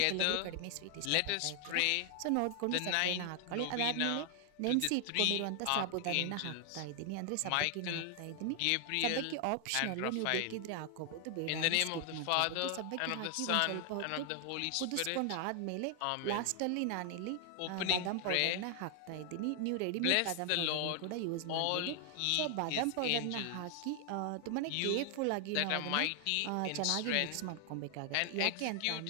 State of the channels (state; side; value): different; both; correlation 0.00